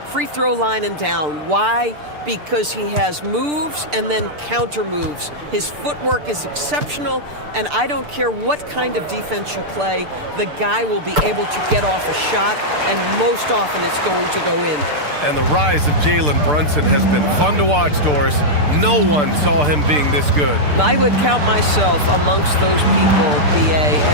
free throw line and down. Why? Because he has moves and then counter moves. His footwork is exceptional, and I don't care what kind of defense you play, the guy will be able to get off a shot, and most often it's going to go in. And the rise of Jalen Brunson has been fun to watch, Doris. No one saw him being this good. I would count myself amongst those people, BA,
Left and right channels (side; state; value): left; late; 6.8 ms